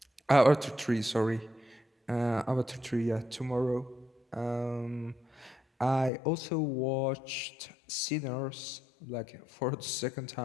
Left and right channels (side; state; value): right; drops out; at 6.1 s